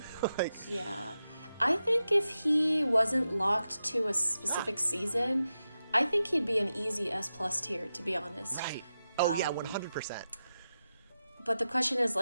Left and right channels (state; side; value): inverted; both; correlation -0.90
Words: Like, Yeah. I think if he wasn't locked to a specific season, I think he'd be an easy S plus tier, to be honest. right. Oh yeah, 100%. But the question is,